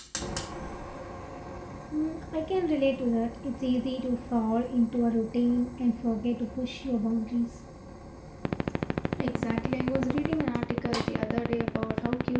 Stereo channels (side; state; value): both; identical; correlation 1.00